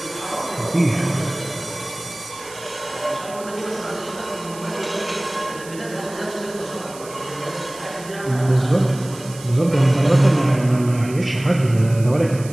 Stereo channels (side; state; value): right; noise; hiss, 17 dB below the sound